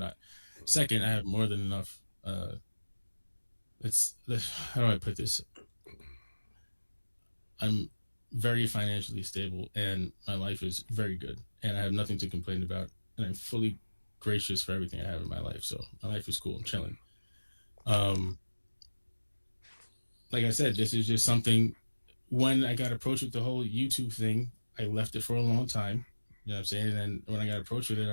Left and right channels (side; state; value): both; inverted; correlation -1.00